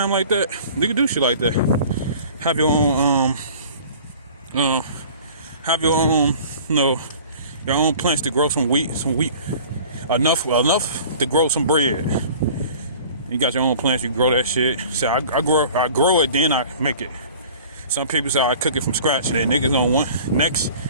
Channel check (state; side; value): inverted; both; correlation -0.45